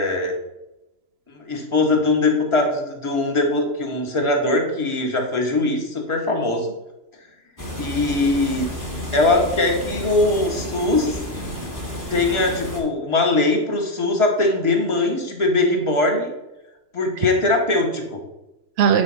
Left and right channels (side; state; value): left; late; 2.9 ms